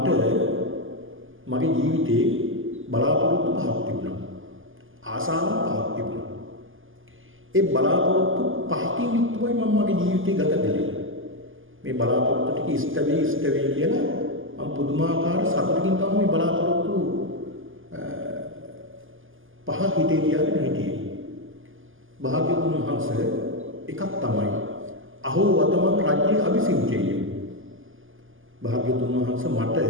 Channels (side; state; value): left; late; 0.58 ms